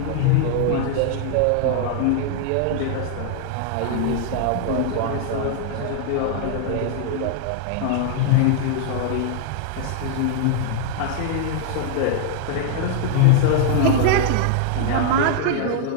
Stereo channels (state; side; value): different; both; correlation 0.00